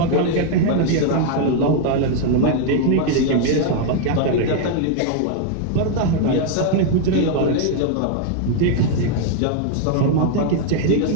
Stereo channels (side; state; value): both; different; correlation 0.00